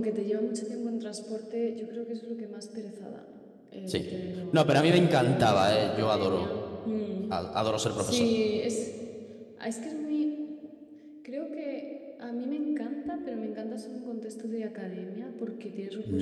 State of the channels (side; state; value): both; identical; correlation 1.00